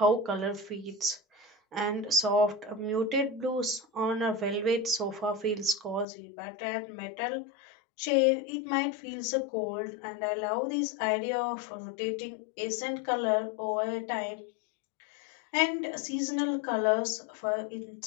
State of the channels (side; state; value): right; drops out; at 6.1 s